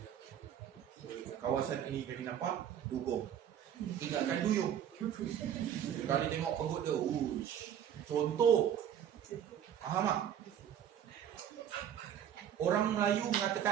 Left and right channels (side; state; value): left; quieter; 9.6 dB